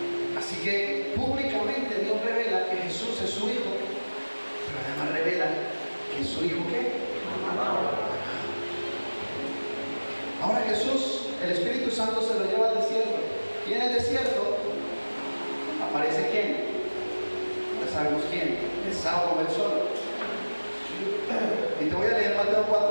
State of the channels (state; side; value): inverted; both; correlation -1.00